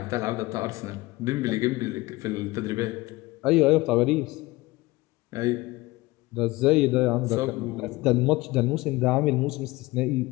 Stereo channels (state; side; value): quieter; right; 20.6 dB